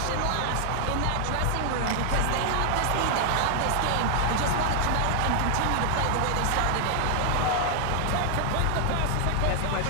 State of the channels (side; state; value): both; different; correlation 0.00